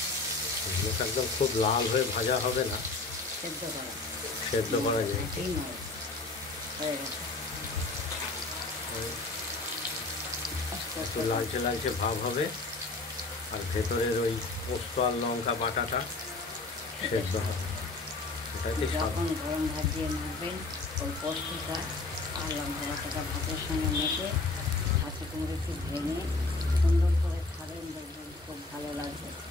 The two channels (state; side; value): quieter; right; 3.4 dB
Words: একদম খুব লাল হয়ে ভাজা হবে না, সেদ্ধ করা যায়। একটু লালচে লালচে ভাব হবে, আর ভেতরের ওই পোস্ত আর লঙ্কা বাটাটা সেদ্ধ হবে। এটাকে যখন গরম ভাত দিয়ে মাখবেন ওই পোস্তটা আর লঙ্কা বাটাটা ভাতের সঙ্গে মেখে হাতে কুমড়ো একটু ভেঙে সুন্দর করে খাবেন, দেখবেন খুব ভালো লাগবে